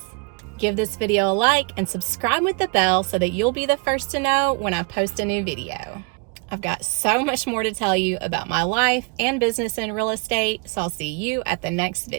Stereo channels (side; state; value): left; quieter; 32.2 dB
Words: Give this video a like and subscribe with the bell so that you'll be the first to know when I post a new video. I've got so much more to tell you about my life and business in real estate, so I'll see you at the next